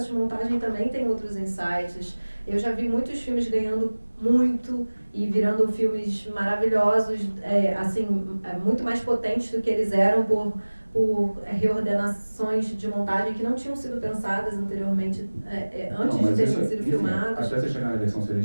de montagem também tem outros insights. Eu já vi muitos filmes ganhando muito e virando filmes maravilhosos, muito mais potentes do que eles eram por reordenações de montagem que não tinham sido pensadas anteriormente, antes de terem sido filmados. Até você chegar na versão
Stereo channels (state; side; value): inverted; both; correlation -1.00